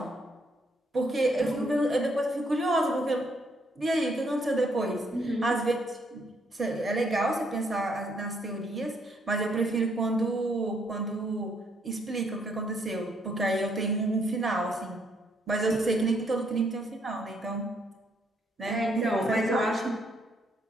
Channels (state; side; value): normal; both; correlation 0.71